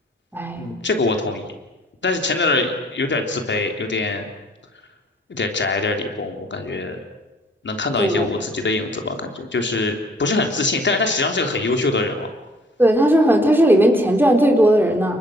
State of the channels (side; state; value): both; normal; correlation 0.58